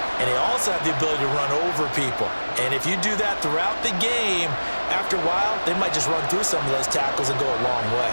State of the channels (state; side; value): inverted; both; correlation -1.00